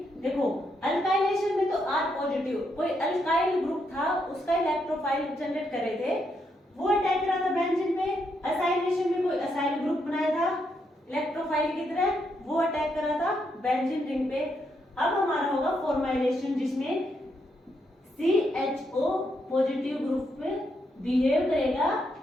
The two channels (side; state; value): both; normal; correlation 0.79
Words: देखो अल्काइलेशन में तो R पॉजिटिव, कोई अल्काइल ग्रुप था उसका इलेक्ट्रोफाइल जनरेट कर रहे थे, वो अटैक करा था बेंजीन पे। असाइलेशन में कोई असाइल ग्रुप बनाया था इलेक्ट्रोफाइल की तरह, वो अटैक करा था बेंजीन रिंग पे। अब हमारा होगा फॉर्माइलेशन जिसमें CHO पॉजिटिव ग्रुप पे बिहेव करेगा